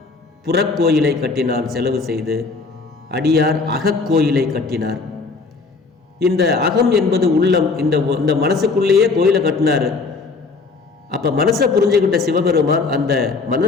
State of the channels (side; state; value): right; quieter; 4.2 dB